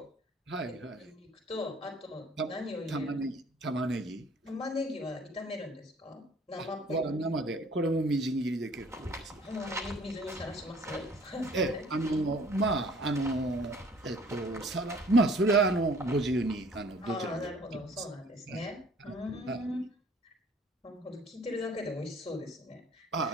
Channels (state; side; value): normal; both; correlation 0.54